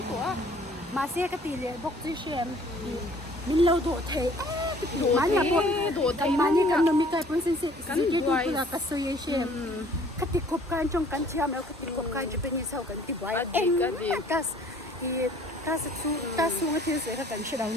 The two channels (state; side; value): normal; both; correlation 0.55